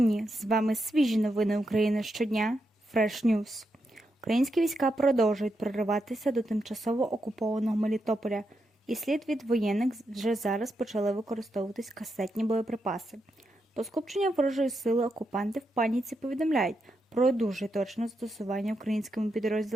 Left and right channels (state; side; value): normal; both; correlation 0.84